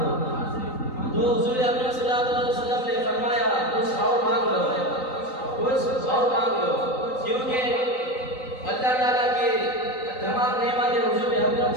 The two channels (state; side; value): late; right; 3.9 ms